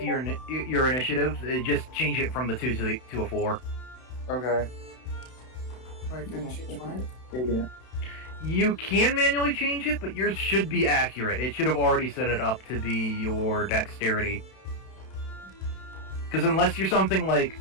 your initiative. Just change it from the 2 to a 4. Okay. Wait, can I change mine? Yeah. You can manually change it, but yours should be accurate. It should have already set it up to be your dexterity. Because unless you're something like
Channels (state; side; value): late; right; 32 ms